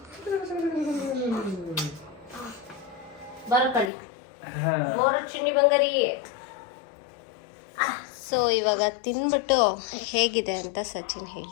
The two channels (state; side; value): drops out; right; at 3.9 s